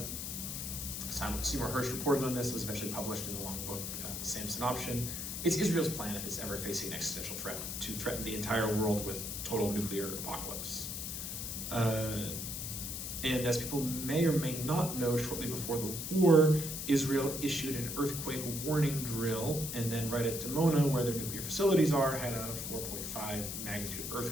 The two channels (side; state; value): left; noise; hiss, 5 dB below the sound